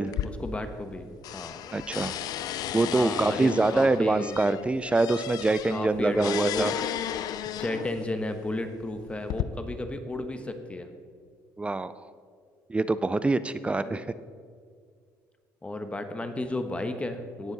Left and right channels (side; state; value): both; normal; correlation 0.82